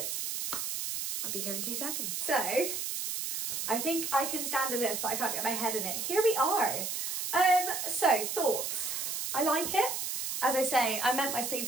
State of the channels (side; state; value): right; noise; hiss, 3 dB below the sound